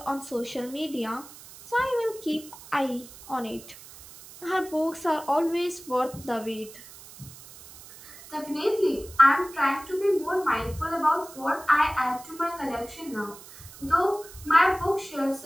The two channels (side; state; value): right; noise; hiss, 18 dB below the sound